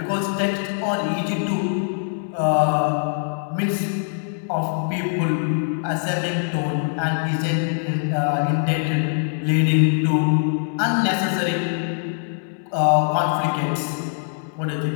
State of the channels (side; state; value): right; silent; digital silence